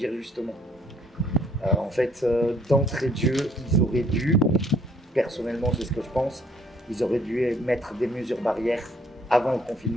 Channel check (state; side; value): normal; both; correlation 0.64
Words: justement. En fait, d'entrée de jeu, ils auraient dû, personnellement c'est ce que je pense, ils auraient dû mettre des mesures barrières avant le